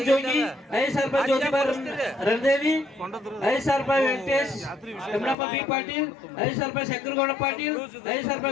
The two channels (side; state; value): right; drops out; at 5.4 s